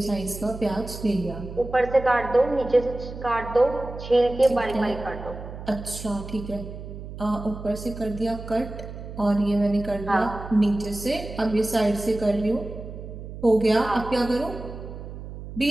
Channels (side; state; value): right; noise; hum, 11 dB below the sound